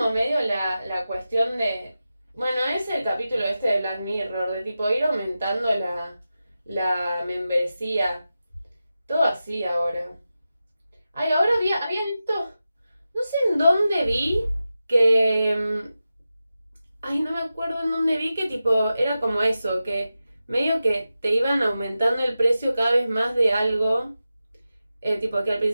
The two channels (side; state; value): both; inverted; correlation -0.92